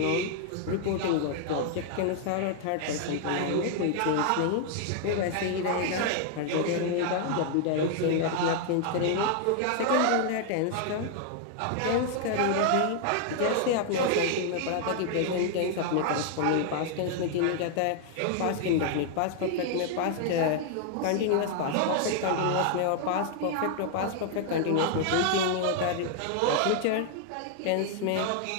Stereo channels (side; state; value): both; different; correlation 0.00